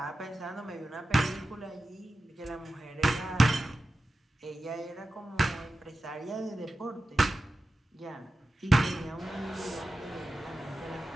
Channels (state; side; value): normal; both; correlation 0.93